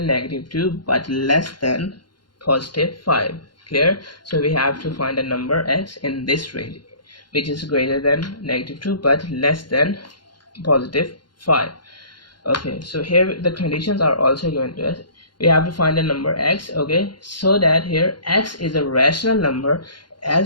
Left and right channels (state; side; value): late; right; 0.71 ms